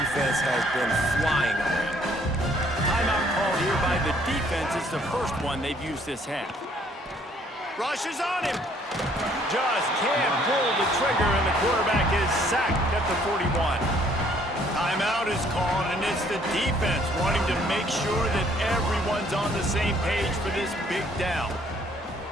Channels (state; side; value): normal; both; correlation 0.63